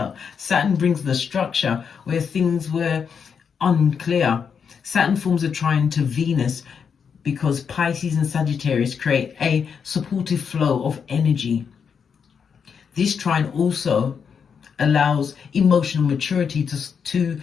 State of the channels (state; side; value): quieter; right; 6.6 dB